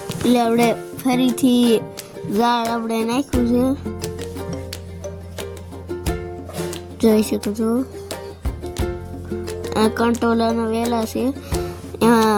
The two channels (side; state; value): both; identical; correlation 1.00